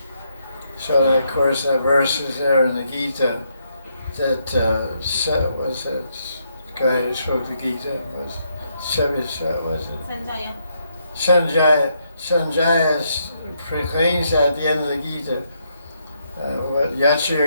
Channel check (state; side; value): inverted; both; correlation -0.76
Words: So that, of course, that verse is there in the Gita that was that guy who spoke the Gita was it? Sanjaya proclaims at the end of the Gita, what Yacha